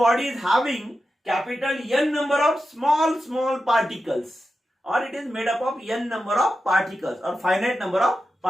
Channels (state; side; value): normal; both; correlation 0.91